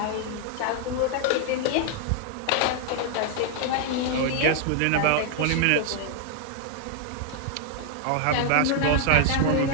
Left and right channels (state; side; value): different; both; correlation 0.00